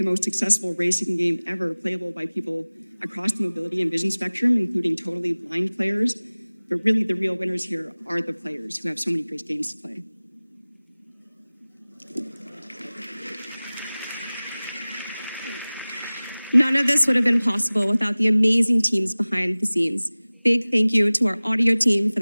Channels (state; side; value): inverted; both; correlation -0.99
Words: most accessible racing game ever playable by people across the mobility and vision spectrum, including totally blind players. But really, the real winners here are the players who have so many great games to play. None of this would have been possible without the amazing teams behind the scenes. Big thank you to our audio team for